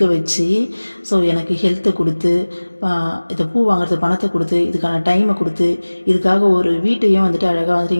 வச்சு. ஸோ எனக்கு ஹெல்த்தை கொடுத்து, இதை பூ வாங்குறது பணத்தை கொடுத்து, இதுக்கான டைமை கொடுத்து, இதுக்காக ஒரு வீட்டையும் வந்துட்டு அழகாக வந்துட்டு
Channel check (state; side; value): inverted; both; correlation -1.00